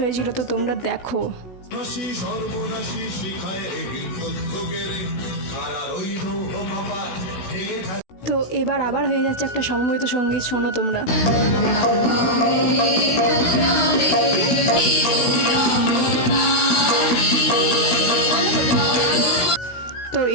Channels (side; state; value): right; late; 16 ms